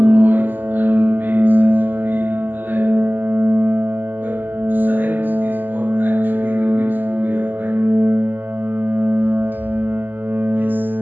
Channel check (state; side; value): late; left; 0.089 ms